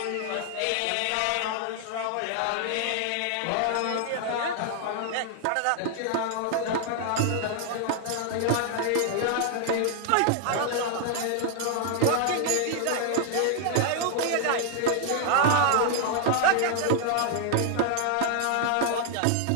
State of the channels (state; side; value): different; both; correlation 0.00